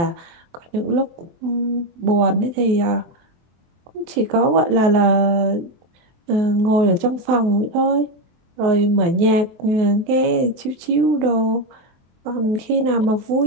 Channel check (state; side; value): late; left; 24 ms